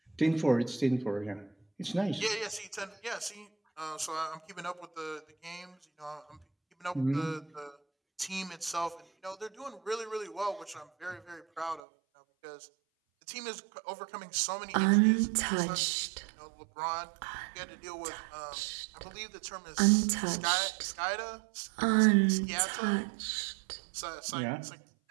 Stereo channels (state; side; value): drops out; left; at 11.8 s